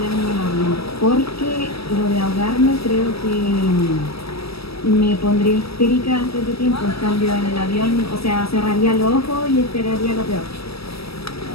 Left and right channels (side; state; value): right; late; 0.77 ms